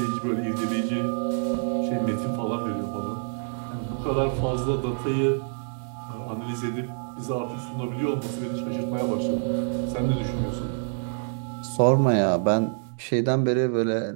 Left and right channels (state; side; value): silent; left; digital silence